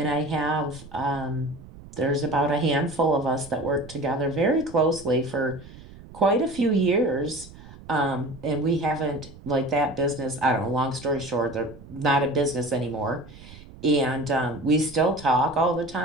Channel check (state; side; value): noise; right; rumble, 18 dB below the sound